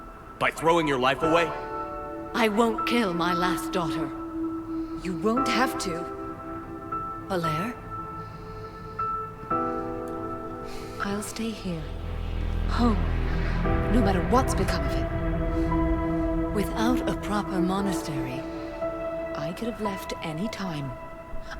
By throwing your life away? I won't kill my last daughter. You won't have to. Falere? I'll stay here. Home. No matter what's become of it. Without a proper monastery, I could have left any time.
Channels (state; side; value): identical; both; correlation 1.00